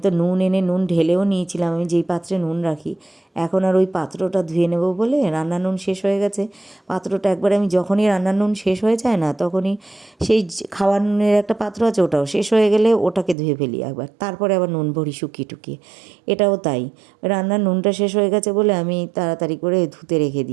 তো নুন এনে নুন ঢেলেও নিয়েছিলাম, আমি যেই পাত্রে নুন রাখি। এখন আর ওই পাত্রটা ধুয়ে নেব বলে, রান্নার নুন শেষ হয়ে গেছে। পাত্রটা একবার আমি যখনই রান্নার নুন শেষ হয়ে যায় না, তখনই সেই খাওয়ার নুনের একটা পাত্র আছে, ওটাও শেষ হয়ে গেলে ওটাকে ধুয়ে ফেলি একবার, তারপরে আবার নুন ভরি শুকিয়ে টুকিয়ে। এটাও তাই, রান্নার নুনটা শেষ হয়ে গেছে বলে আমি তাড়াতাড়ি করে ধুতে রেখে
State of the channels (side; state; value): left; drops out; at 13.4 s